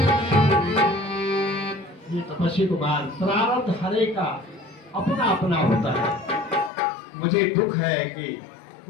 ये तपस्वी कुमार, प्रारब्ध हरे का अपना अपना होता है। मुझे दुख है कि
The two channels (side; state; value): right; drops out; at 6.7 s